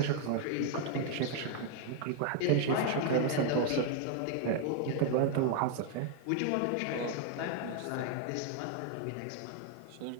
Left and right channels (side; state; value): both; different; correlation 0.00